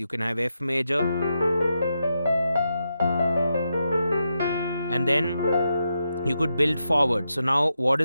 can have F major, and then you could build forward. So now what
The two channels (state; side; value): inverted; both; correlation -0.85